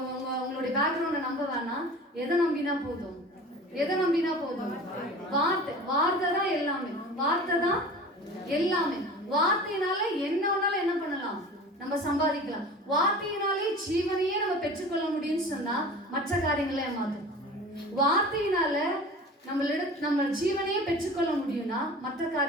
உங்களுடைய பேக்ரவுண்டை நம்ப வேணாம். எதை நம்பினா போதும்? வார்த்தை தான் எல்லாமே. வார்த்தை தான் எல்லாமே. வார்த்தையினால என்ன வேணாலும் என்ன பண்ணலாம்? நம்ம சம்பாதிக்கலாம். வார்த்தையினாலே ஜீவனையே நம்ம பெற்றுக்கொள்ள முடியும்னு சொன்னா மற்ற காரியங்களை ஏமாத்தும். வார்த்தையினால நம்ம ஜீவனையே பெற்றுக்கொள்ள முடியும்னா மற்ற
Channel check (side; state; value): both; normal; correlation 0.39